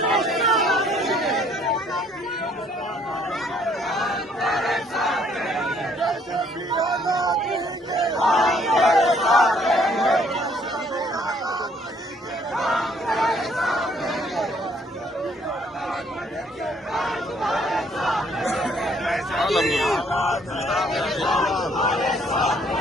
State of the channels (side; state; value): both; normal; correlation 0.64